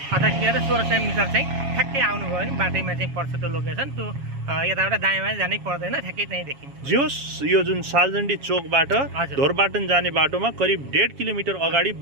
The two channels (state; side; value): late; left; 7.3 ms